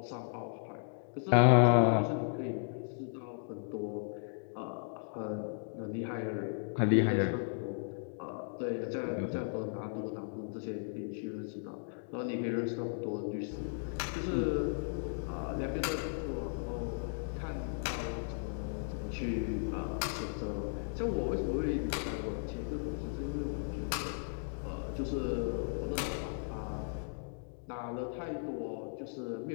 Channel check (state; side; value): silent; right; digital silence